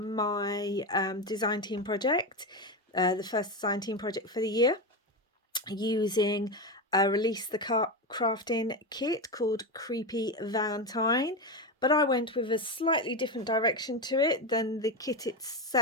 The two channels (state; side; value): normal; both; correlation 0.15